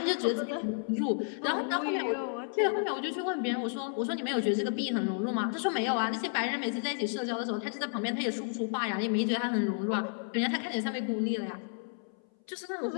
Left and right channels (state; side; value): silent; right; 57 dB below the other